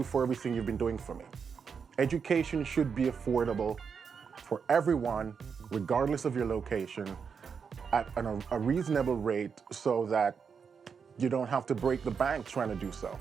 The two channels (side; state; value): left; quieter; 6.2 dB